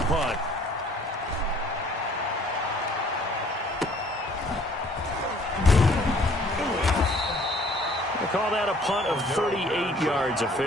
Call that a punt of 38 yards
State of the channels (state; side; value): normal; both; correlation 0.57